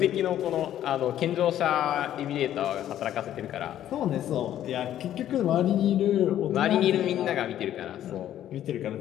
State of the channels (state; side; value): quieter; right; 11.7 dB